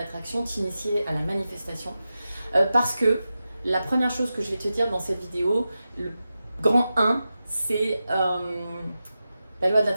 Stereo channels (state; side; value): inverted; both; correlation -0.92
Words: t'initier à la manifestation, parce que la première chose que je vais te dire dans cette vidéo, le grand 1, c'est la loi de